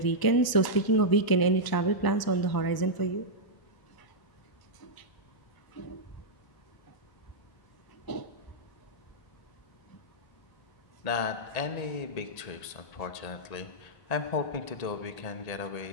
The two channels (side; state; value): right; late; 1.0 ms